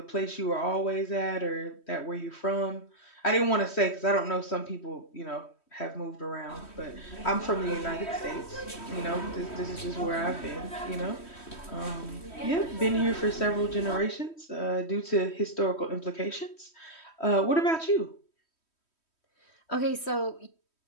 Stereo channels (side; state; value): right; late; 3.1 ms